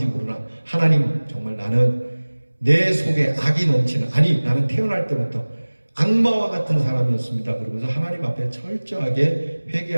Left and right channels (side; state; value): both; inverted; correlation -1.00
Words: 모르나 하나님, 정말 나는 내 속에 악이 넘치는, 아니 나는 태어날 때부터 악마와 같은 사람이었습니다. 그러면서 하나님 앞에 철저하게